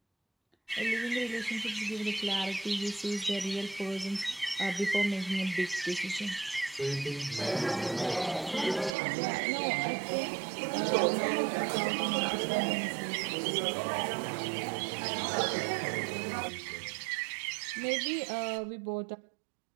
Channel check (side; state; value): left; drops out; at 9.0 s